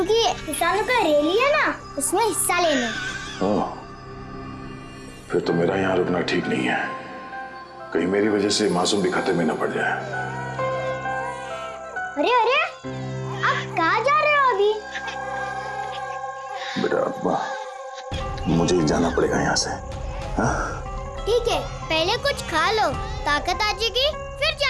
किसानों का रैली है ना, उसमें हिस्सा लेने। ओह, फिर तो मेरा यहाँ रुकना ठीक नहीं है, कहीं मेरी वजह से मासूम भी खतरे में न पड़ जाए। अरे अरे, आप कहाँ जा रहे हो अभी? बेटा मुझे जाना पड़ेगा यहाँ से। हाँ? ठीक है, पहले कुछ खा लो, ताकत आ जाएगी फिर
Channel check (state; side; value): identical; both; correlation 1.00